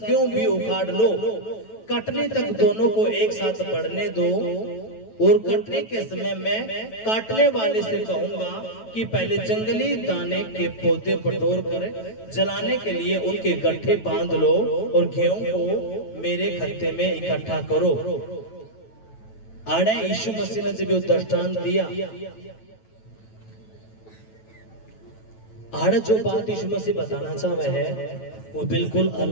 भी उखाड़ लो। कटने तक दोनों को एक साथ बढ़ने दो और कटने के समय मैं काटने वाले से कहूंगा कि पहले जंगली दाने के पौधे बटोर कर जलाने के लिए उनके गट्ठे बांध लो और गेहूं को मेरे खत्ते में इकट्ठा करो। आड़े यीशु मसीह ने जब ये दृष्टांत दिया, आड़े जो बात यीशु मसीह बताना चाह रहे हैं वो बिल्कुल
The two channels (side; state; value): right; late; 9.1 ms